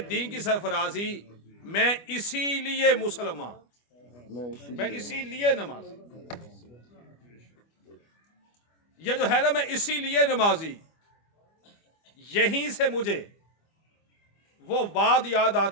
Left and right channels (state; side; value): late; right; 25 ms